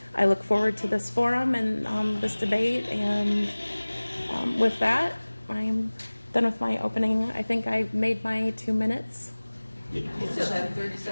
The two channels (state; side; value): inverted; both; correlation -1.00